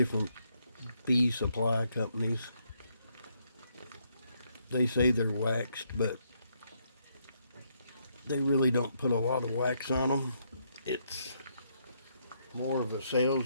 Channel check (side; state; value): both; inverted; correlation -0.75